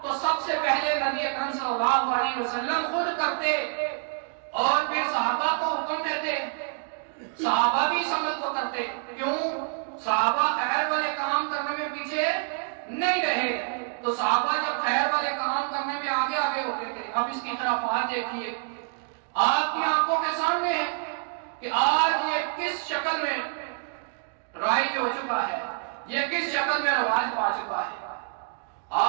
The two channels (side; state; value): left; silent; 60 dB below the other